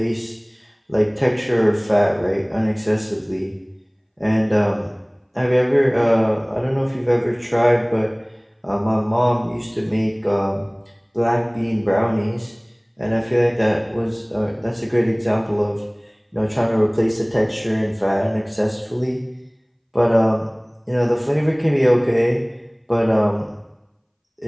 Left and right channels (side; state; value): both; identical; correlation 1.00